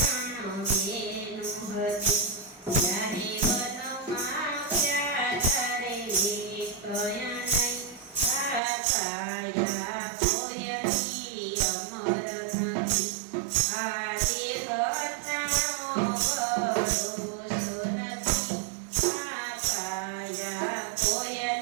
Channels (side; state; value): left; drops out; at 8.6 s